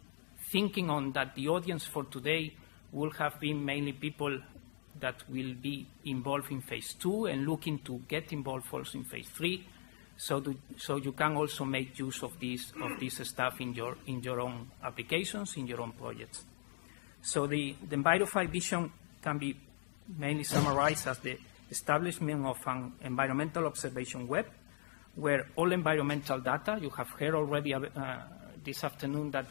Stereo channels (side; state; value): right; silent; 52 dB below the other